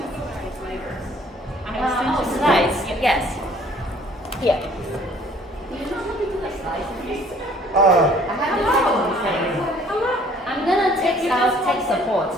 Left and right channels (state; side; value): normal; both; correlation 0.57